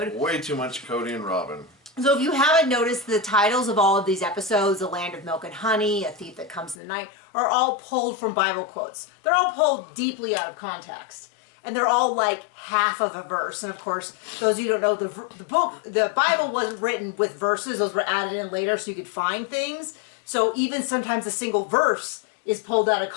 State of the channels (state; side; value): drops out; right; at 6.8 s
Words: Way too much Cody and Robin. So if you haven't noticed, the titles of all of these episodes, The Land of Milk and Honey, A Thief That Comes in the Night, are all pulled from Bible quotes. They're all pulled deeply out of context. And they're all like half of a verse. And of course, those of you who don't know, the Bible wasn't written with verses. Those were added in later so you could find things. So even sometimes a single verse is pulled out of